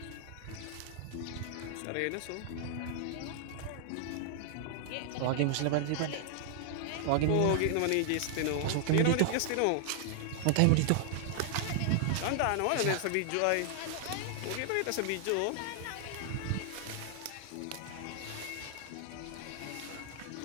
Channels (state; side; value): different; both; correlation 0.00